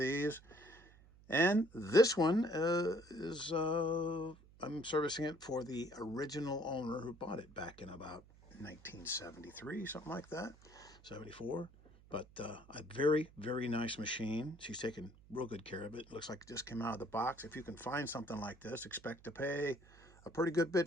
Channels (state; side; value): noise; right; hum, 24 dB below the sound